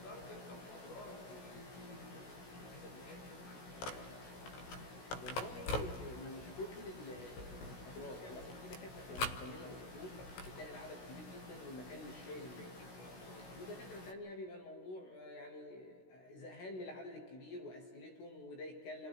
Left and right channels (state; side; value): late; right; 16 ms